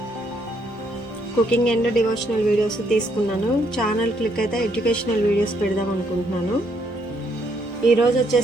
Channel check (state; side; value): normal; both; correlation 0.72